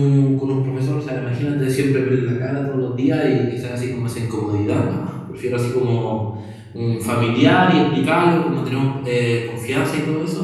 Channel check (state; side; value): identical; both; correlation 1.00